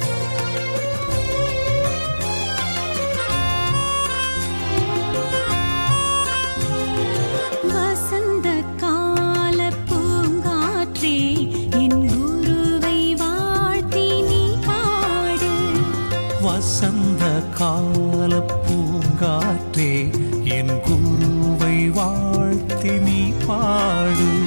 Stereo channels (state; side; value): inverted; both; correlation -1.00